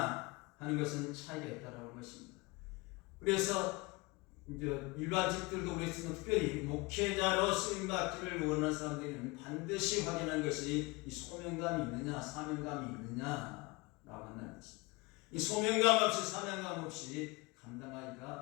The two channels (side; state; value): right; quieter; 24.7 dB